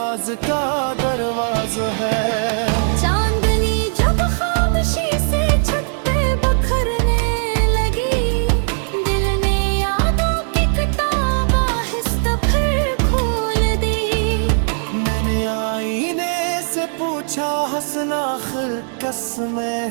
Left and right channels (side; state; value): left; silent; digital silence